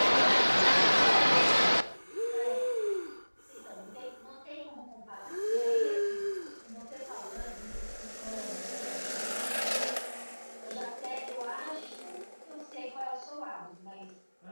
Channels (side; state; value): both; inverted; correlation -1.00